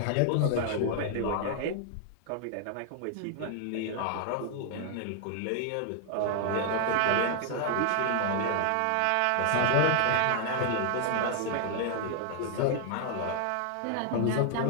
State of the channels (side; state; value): both; different; correlation 0.00